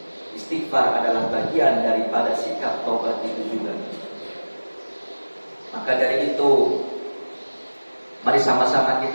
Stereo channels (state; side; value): inverted; both; correlation -1.00